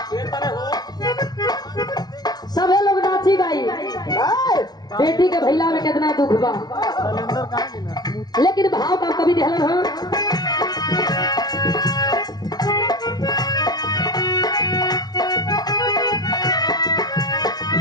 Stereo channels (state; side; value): late; right; 0.19 ms